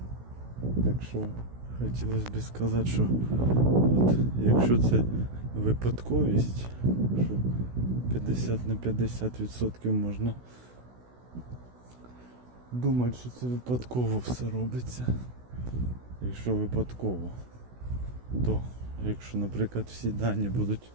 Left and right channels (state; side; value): late; left; 16 ms